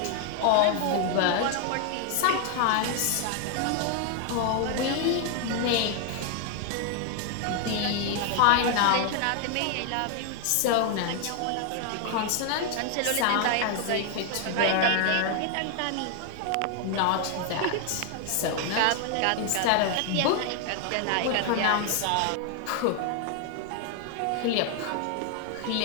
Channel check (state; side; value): different; both; correlation 0.00